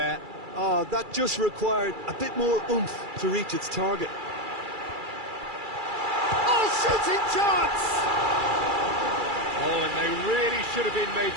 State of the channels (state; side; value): late; left; 2.3 ms